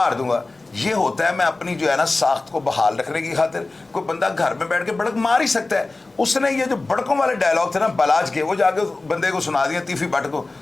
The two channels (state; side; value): quieter; right; 3.2 dB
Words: दूंगा। ये होता है मैं अपनी जो है ना साख्त को बहाल रखने की खातिर। कोई बंदा घर में बैठ के बड़क मार ही सकता है। उसने ये जो बड़कों वाले डायलॉग थे ना बलाज के, वो जाके बंदे को सुना दिया तीफी भट्ट को।